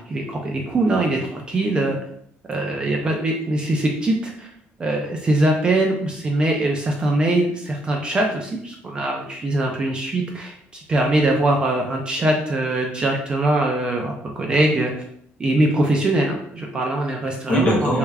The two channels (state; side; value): normal; both; correlation 0.74